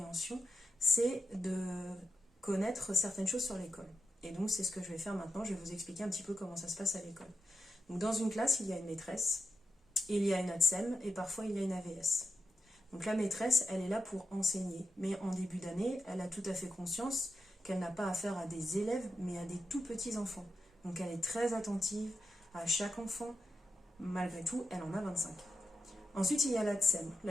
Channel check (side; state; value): both; normal; correlation 0.87